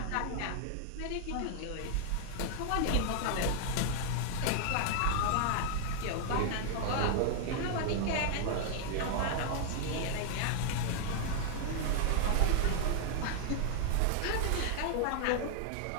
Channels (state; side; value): different; both; correlation 0.00